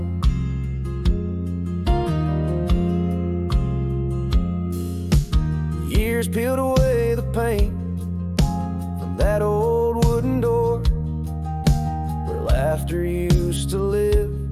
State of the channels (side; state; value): both; identical; correlation 1.00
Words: Years peeled away the paint from that old wooden door where laughter used to live.